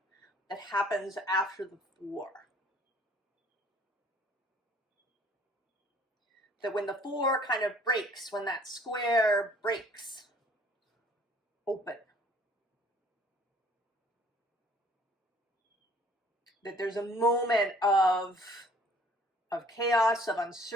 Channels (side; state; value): both; normal; correlation 0.56